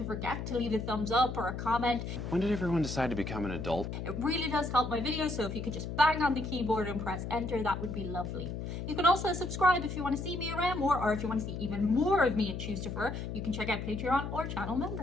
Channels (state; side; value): noise; left; hum, 5 dB below the sound